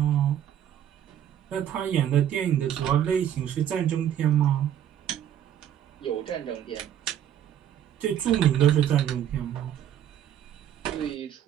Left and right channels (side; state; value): left; quieter; 10.3 dB